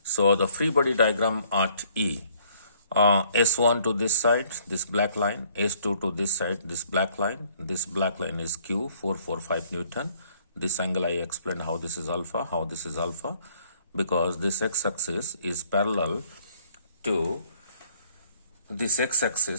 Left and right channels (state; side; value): inverted; both; correlation -0.62